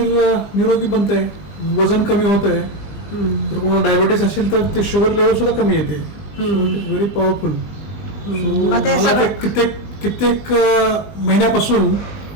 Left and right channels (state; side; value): late; right; 20 ms